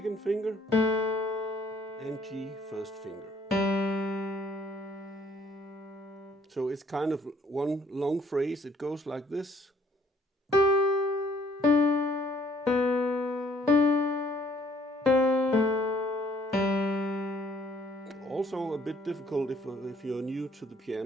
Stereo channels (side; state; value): both; normal; correlation 0.62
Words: finger, and G first finger. So it's kind of one long phrase. It goes like this. Also a bit difficult if you're new to the